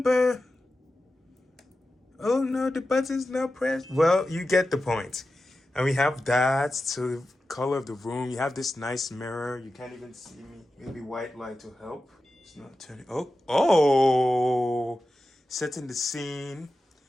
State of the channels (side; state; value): both; normal; correlation 0.92